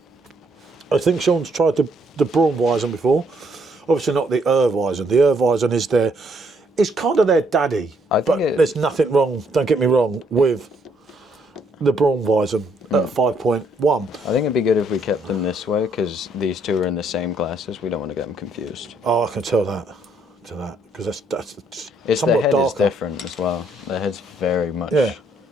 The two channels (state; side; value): normal; both; correlation 0.70